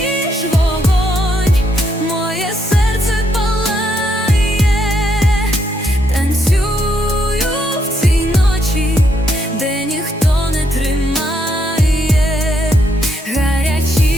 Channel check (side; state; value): both; normal; correlation 0.76